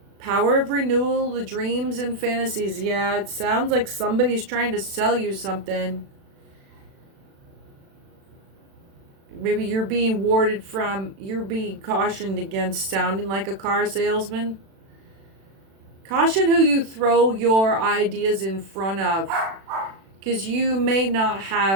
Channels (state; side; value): late; left; 36 ms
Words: Power of renewal, the dreams and fantasies. Yeah, it sounds like somebody's trying to sell you something. Maybe you're being you're being cautioned against sounding like a car salesman. Caution who you throw your ideas in front of, because you may not